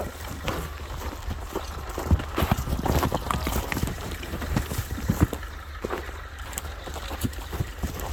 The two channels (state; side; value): identical; both; correlation 1.00